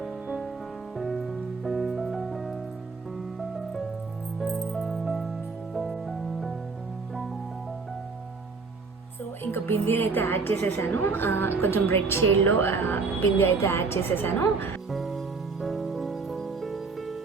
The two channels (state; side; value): quieter; left; 4.4 dB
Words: సో ఇంకా బిందీ అయితే యాడ్ చేసేసాను. కొంచెం రెడ్ షేడ్లో బిందీ అయితే యాడ్ చేసేసాను.